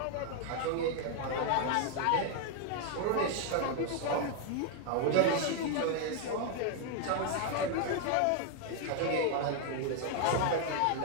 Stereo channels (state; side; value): different; both; correlation 0.00